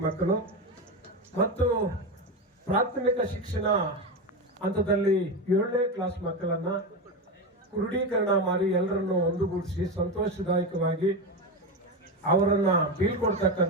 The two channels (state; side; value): normal; both; correlation 0.16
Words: ಮಕ್ಕಳು ಮತ್ತು ಪ್ರಾಥಮಿಕ ಶಿಕ್ಷಣ ಹಂತದಲ್ಲಿ 7ನೇ ಕ್ಲಾಸ್ ಮಕ್ಕಳನ್ನ ಕ್ರೋಢೀಕರಣ ಮಾಡಿ ಎಲ್ಲರನ್ನು ಒಂದುಗೂಡಿಸಿ ಸಂತೋಷದಾಯಕವಾಗಿ ಅವರನ್ನ